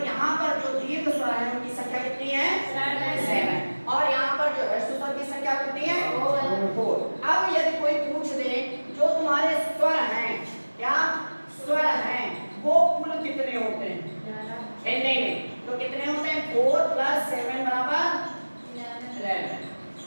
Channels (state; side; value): inverted; both; correlation -1.00